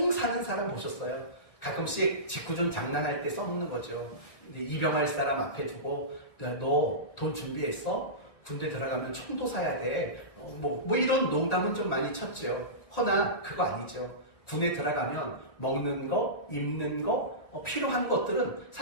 사는 사람 보셨어요? 가끔씩 직구준 장난할 때 써먹는 거죠. 입영할 사람 앞에 두고 너 돈 준비했어? 군대 들어가면 총도 사야 돼. 이런 농담은 좀 많이 쳤죠. 허나 그거 아니죠. 군에 들어가면 먹는 거, 입는 거, 필요한 것들은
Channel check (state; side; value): late; right; 1.9 ms